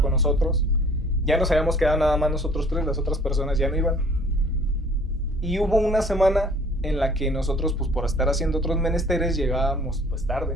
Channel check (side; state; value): both; normal; correlation 0.53